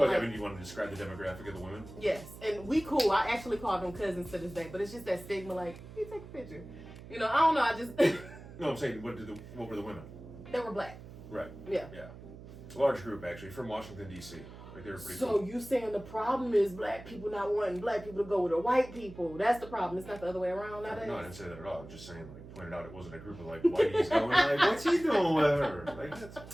I mean, you want to describe the demographic of the women? Yes, and we cool. I actually call them cousins to this day, but it's just that stigma. Like, you take a picture. I don't know. I just No, I'm saying, what were the women? they were black. Right. Yeah. Yeah. Large group actually from Washington D.C. Like they were pretty. So cool. you saying the problem is black people not wanting black people to go with the white people? That's the problem. It's not the other way around nowadays. No, I didn't say that at all. I was just saying, like, pointed out it wasn't a group of like whiteies going like, "What's he doing with her?" Like,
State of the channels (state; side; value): noise; right; hum, 15 dB below the sound